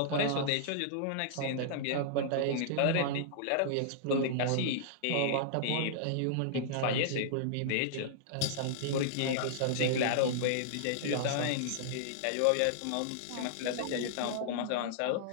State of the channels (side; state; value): both; different; correlation -0.02